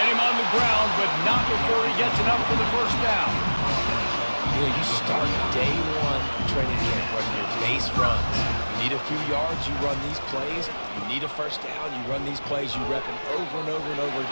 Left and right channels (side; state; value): both; inverted; correlation -1.00